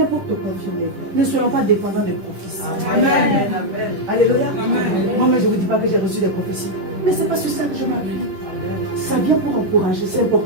pour te confirmer. Ne soyons pas dépendants des prophéties. Amen. Alléluia. Amen. Moi-même, je ne vous dis pas que j'ai reçu des prophéties. Mais ce n'est pas sur ça que je m'appuie. Ça vient pour encourager. C'est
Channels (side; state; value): left; late; 10 ms